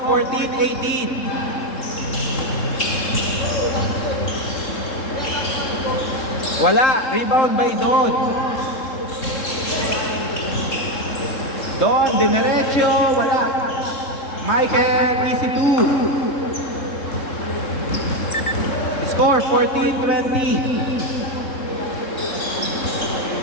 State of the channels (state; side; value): late; right; 3.7 ms